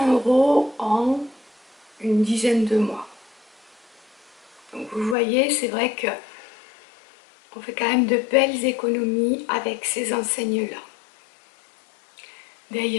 euros en une dizaine de mois. Donc vous voyez, c'est vrai que on fait quand même de belles économies avec ces enseignes-là.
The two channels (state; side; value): drops out; right; at 5.2 s